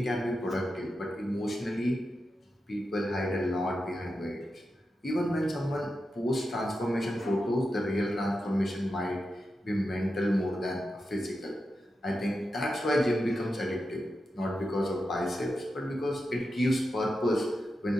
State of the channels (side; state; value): both; normal; correlation 0.89